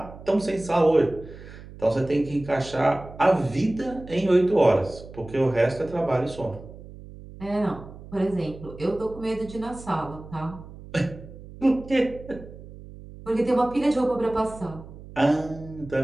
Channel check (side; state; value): right; noise; hum, 16 dB below the sound